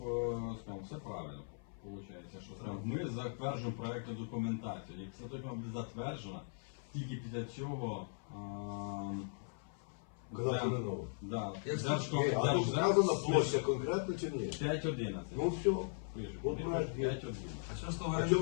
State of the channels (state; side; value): silent; right; 52 dB below the other